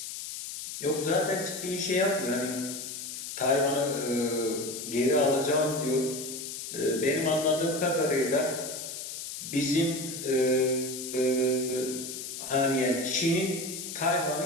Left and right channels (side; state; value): left; noise; hiss, 8 dB below the sound